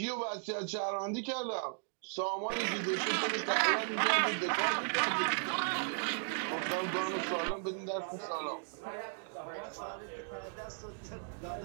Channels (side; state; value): left; silent; 54 dB below the other